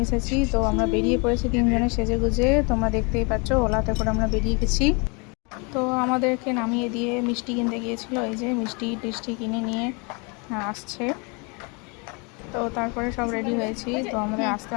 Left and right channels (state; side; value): quieter; right; 31.7 dB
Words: এসেছি। তো আমরা বেরিয়ে পড়েছি তিনজনে সেজেগুজে, তোমরা দেখতেই পাচ্ছ। ওলাতে করে আমরা বেরিয়ে গেছি। তো আমাদেরকে নামিয়ে দিয়ে মিষ্টি কিনতে গিয়েছিল, এই যে মিষ্টি টিষ্টি কিনে নিয়ে আসছে। তো তারপরে সব রেডি হয়েছি। তো আমাদের আসতে